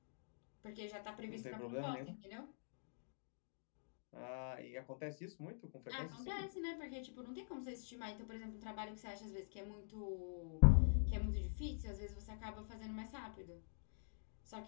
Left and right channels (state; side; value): silent; right; digital silence